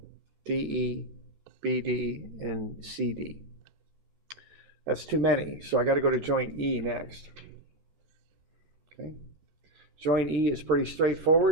DE, BD, and CD. That's too many, so I got to go to joint E next. Okay. Joint E is pretty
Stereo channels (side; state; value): left; late; 14 ms